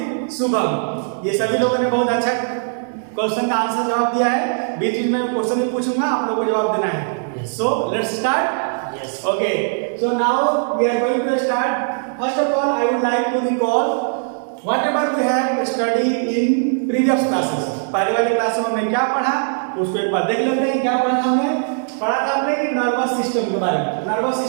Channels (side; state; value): left; silent; digital silence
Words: शुभम, ये सभी लोगों ने बहुत अच्छा क्वेश्चन का आंसर जवाब दिया है. बीच में क्वेश्चन भी पूछूंगा, आप लोगों को जवाब देना है. So let's start. Yes. Okay, so now we are going to start. First of all, I would like to recall whatever we have studied in previous classes. पहले वाली क्लास में हमने क्या पढ़ा, उसको एक बार देख लेते हैं. क्या पढ़ा हमने? पढ़ा था हमने कि नर्वस सिस्टम के बारे में. नर्वस